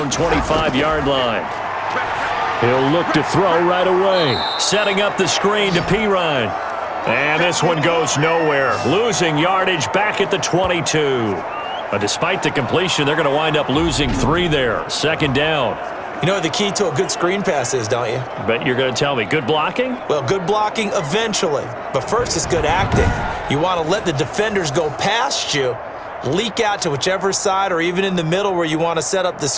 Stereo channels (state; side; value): identical; both; correlation 1.00